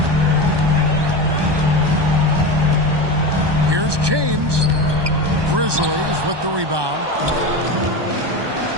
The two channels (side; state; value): left; late; 1.2 ms